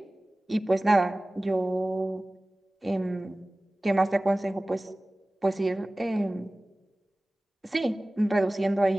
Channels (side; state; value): both; normal; correlation 0.98